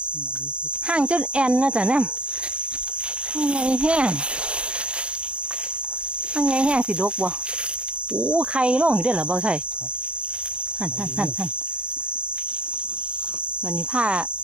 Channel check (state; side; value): late; left; 0.057 ms